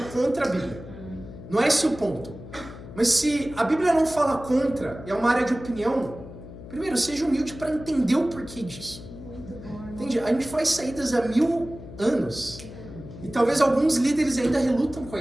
contra a Bíblia. Não é esse o ponto. Mas se a Bíblia não fala contra, e é uma área de opinião, primeiro, seja humilde para entender o porquê disso. Entende? A gente faz saídas há 1000 anos. E talvez alguns líderes ainda relutam com a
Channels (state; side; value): noise; left; hum, 14 dB below the sound